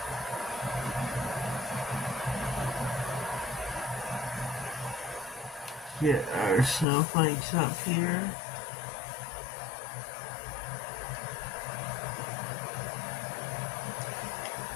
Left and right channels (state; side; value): drops out; right; at 6.9 s